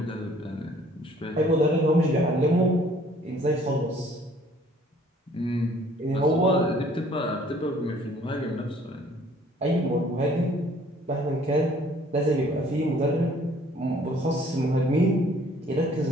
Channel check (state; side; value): normal; both; correlation 0.57